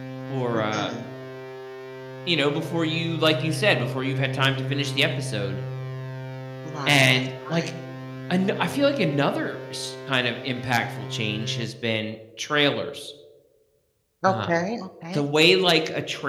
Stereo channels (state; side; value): identical; both; correlation 1.00